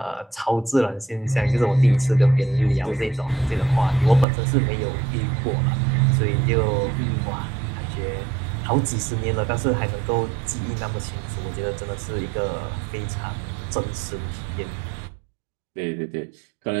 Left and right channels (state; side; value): drops out; left; at 4.2 s